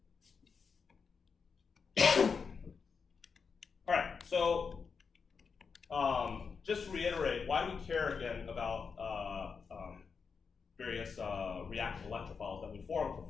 All right, so just to reiterate, why do we care again about various reactive electrophiles that we form for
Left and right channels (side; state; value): right; quieter; 5.6 dB